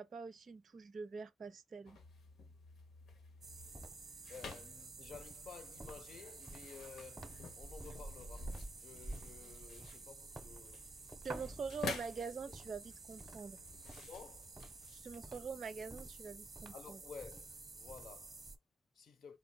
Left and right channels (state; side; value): normal; both; correlation 0.76